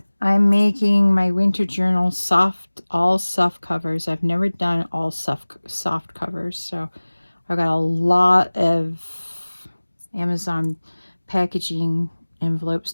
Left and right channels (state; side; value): inverted; both; correlation -1.00